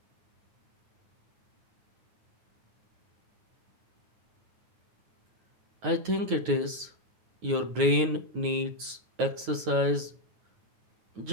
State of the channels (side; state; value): left; late; 9.4 ms